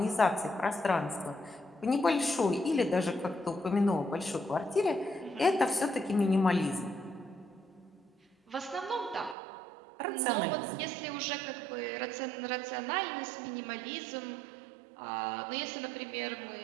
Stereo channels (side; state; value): left; drops out; at 9.3 s